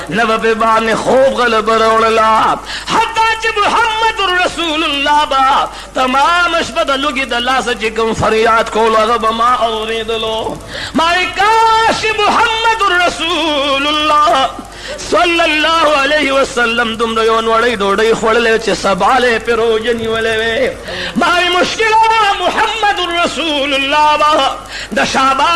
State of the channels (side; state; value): both; identical; correlation 1.00